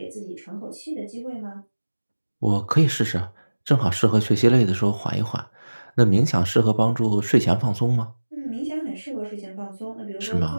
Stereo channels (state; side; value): inverted; both; correlation -1.00